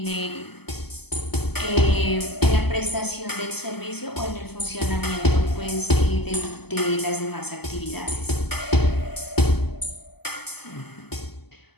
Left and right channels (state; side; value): late; right; 0.97 ms